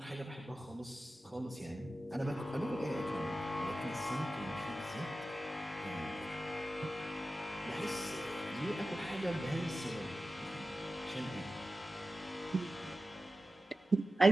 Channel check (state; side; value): normal; both; correlation 0.94